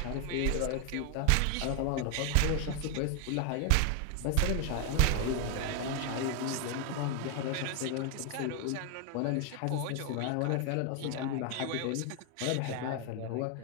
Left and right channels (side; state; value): both; different; correlation 0.01